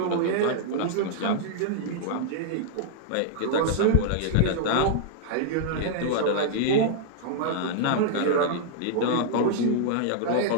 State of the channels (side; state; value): both; different; correlation -0.01